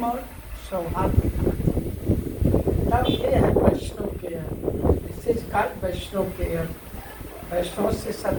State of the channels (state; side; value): identical; both; correlation 1.00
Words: और सौहार्द दिखाना चाहिए। तब ये है Vaishnav care, this is called Vaishnav care. Vaishnav से